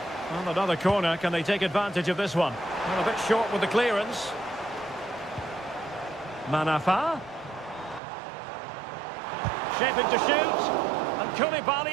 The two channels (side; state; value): left; drops out; at 8.0 s